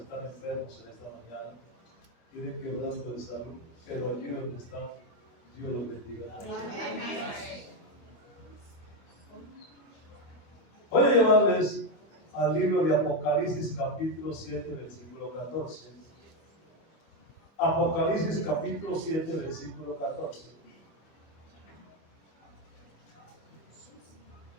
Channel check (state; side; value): late; right; 25 ms